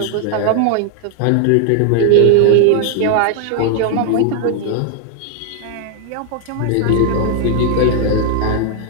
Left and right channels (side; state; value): both; different; correlation 0.00